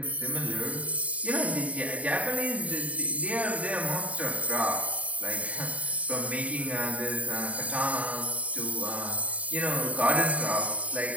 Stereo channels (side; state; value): left; late; 0.068 ms